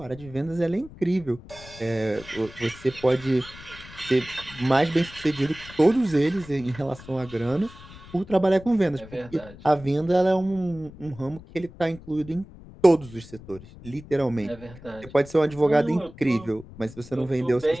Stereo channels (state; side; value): noise; left; rumble, 18 dB below the sound